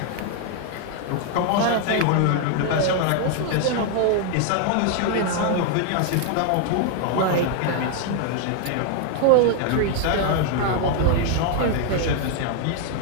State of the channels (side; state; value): both; different; correlation 0.00